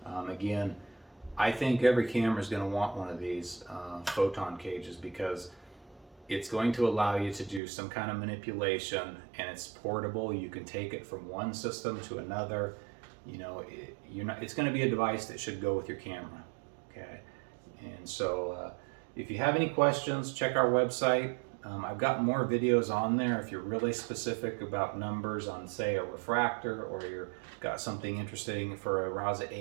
Again, I think every camera is going to want one of these photon cages because it's going to allow you to do some kind of manipulation, and it's portable. You can take it from one system to another. You know, it's going to be a device that should go with your camera. Okay, and so if you have any questions, check our website. I've got more videos on there if you're really specific about numbers on, say, a refractor, or you've got something interesting for a RASA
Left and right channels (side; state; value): left; drops out; at 7.6 s